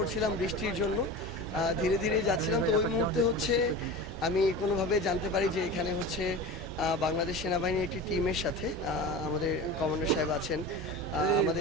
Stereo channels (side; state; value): both; normal; correlation 0.31